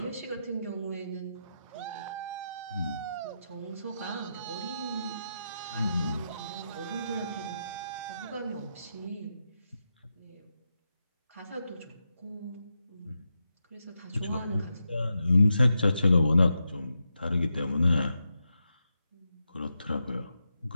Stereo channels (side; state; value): both; inverted; correlation -0.87